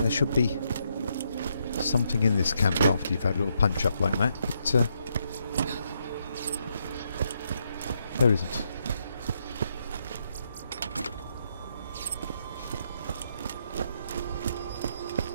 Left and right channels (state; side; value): inverted; both; correlation -0.77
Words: should be something in this camp after you've had a little punch up like that, but there isn't.